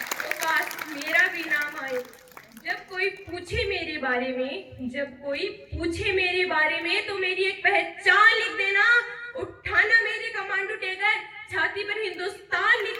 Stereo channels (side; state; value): both; identical; correlation 1.00